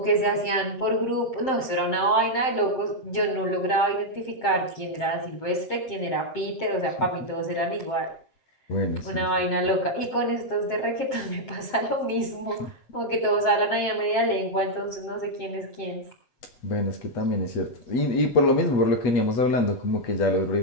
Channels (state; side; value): late; right; 7.6 ms